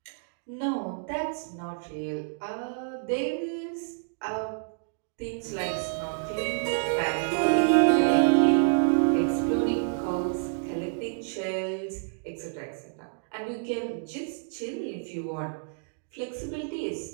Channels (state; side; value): silent; left; digital silence